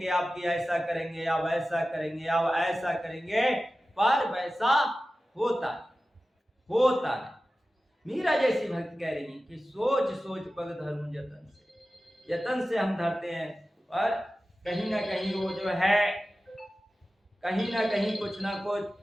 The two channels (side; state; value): both; normal; correlation 0.95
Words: आपकी ऐसा करेंगे, आप ऐसा करेंगे, आप ऐसा करेंगे, पर वैसा होता नहीं। मीरा जैसी भक्त कह रही कि सोच सोच पग धरूं जतन से, जतन से हम धरते हैं, पर कहीं ना कहीं वो जो है कहीं ना कहीं कुछ ना कुछ